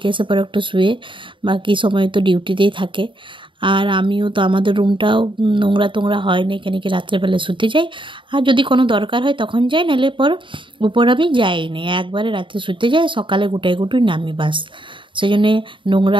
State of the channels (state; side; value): late; left; 0.24 ms